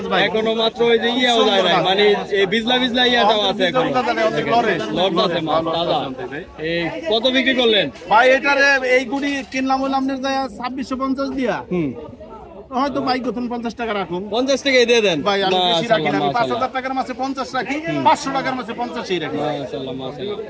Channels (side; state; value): both; identical; correlation 1.00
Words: ভাই, এখনো মাত্র ওই যে ইয়েও যায় না, মানে এই বিজলা বিজলা ইয়াটাও আছে এখন, লট আছে মাছ তাজা। এই কত বিক্রি করলেন ভাই? এটারে এই গুড়ি কিনলাম হইলাম আপনার 2650 দিয়া। হয়তো ভাই প্রথম 50 টাকা রাখুন। 50 টাকাই দিয়ে দেন ভাই, আমি বেশি রাখি না, 5000 টাকার মাছে 50 রাখি, 500 টাকার মাছে 50ই রাখি। মাশাআল্লাহ মাশাআল্লাহ।